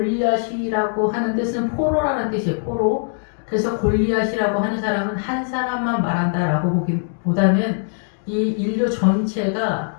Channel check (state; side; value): silent; right; digital silence